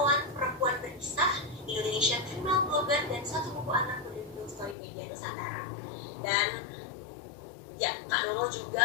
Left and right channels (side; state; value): right; drops out; at 4.8 s